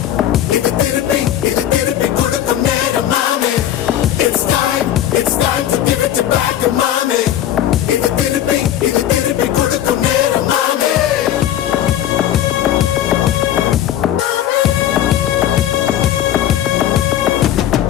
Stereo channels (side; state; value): right; quieter; 11.4 dB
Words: இது திருப்பி கொடுக்கும் நேரம், mommy. It's time to give it back, mommy. இது திருப்பி கொடுக்கும் நேரம், mommy.